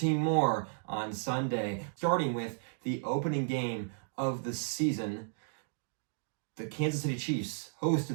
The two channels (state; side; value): silent; left; digital silence